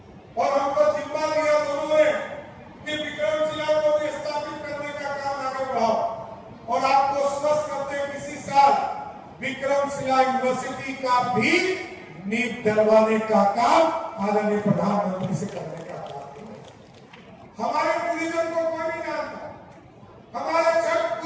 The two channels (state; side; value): identical; both; correlation 1.00